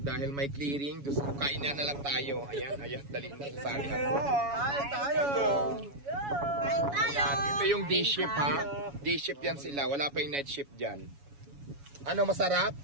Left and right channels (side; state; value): left; late; 7.1 ms